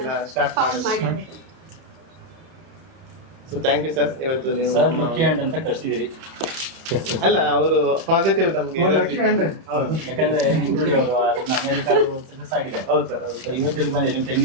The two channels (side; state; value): left; late; 31 ms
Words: ಫೌಂಡ್ ಮಾಡಿದ್ರು. So thank you sir. ಇವತ್ತು ನೀವು ಸರ್ ಲಕ್ಕಿ ಹ್ಯಾಂಡ್ ಅಂತ ಕರ್ಸಿದಿರಿ. ಅಲ್ಲ, ಅವರು ಪಾಸಿಟಿವ್ ನಮ್ಗೆ ಯಾಕಂದ್ರೆ ಇಂಕ್ಲೂಡಿ ಅವರು ಅಮೆರಿಕಾದ ಸಕ್ಸಸ್ ಆಗಿದೆ. ಹೌದು ಸರ್, ಹೌದು ಸರ್. ಇವತ್ತಿಗೆ ಬಂದಿರಿ 10